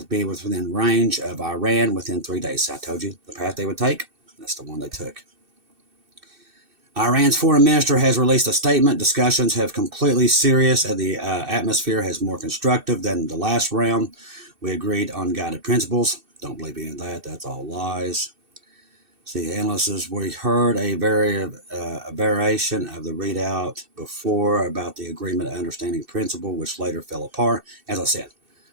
be within range of Iran within 3 days. I told you the path they would take. That's the one they took. Iran's foreign minister has released a statement. Discussions have completely serious and the atmosphere has more constructive than the last round. We agreed on guided principles. Don't believe any of that. That's all lies. See, analysts, we heard a variation of the readout before about the agreement of understanding principle, which later fell apart. As I said,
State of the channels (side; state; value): left; late; 2.6 ms